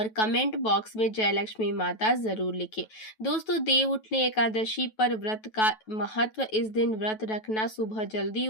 कमेंट बॉक्स में जय लक्ष्मी माता जरूर लिखें। दोस्तों, देव उठनी एकादशी पर व्रत का महत्व। इस दिन व्रत रखना, सुबह जल्दी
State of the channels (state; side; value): late; right; 9.2 ms